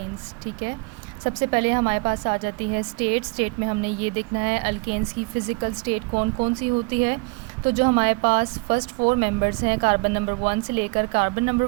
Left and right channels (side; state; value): left; quieter; 30.4 dB